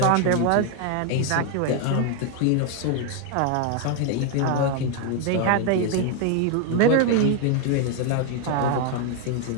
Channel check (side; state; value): both; different; correlation 0.01